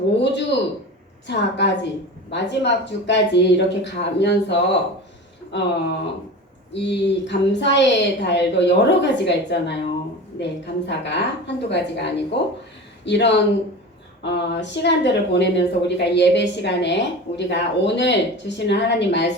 5주 차까지 마지막 주까지 이렇게 가면서 이 감사의 달도 여러 가지가 있잖아요. 네, 감사가 한두 가지가 아니고 이런 시간들을 보내면서 우리가 예배 시간에 우리가 오늘 주시는 하나님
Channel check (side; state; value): both; normal; correlation 0.32